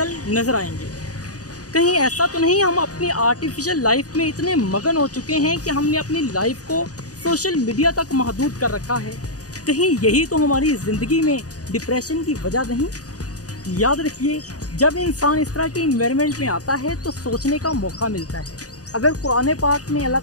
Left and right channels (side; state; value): right; late; 0.67 ms